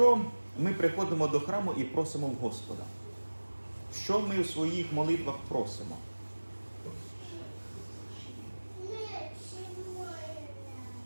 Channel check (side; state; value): both; inverted; correlation -1.00